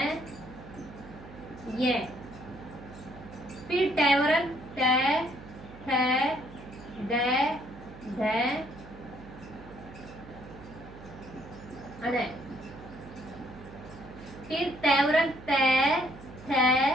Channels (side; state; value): right; noise; hum, 17 dB below the sound